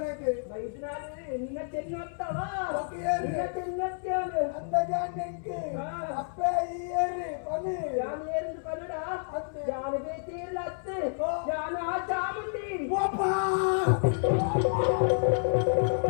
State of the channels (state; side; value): silent; right; 58 dB below the other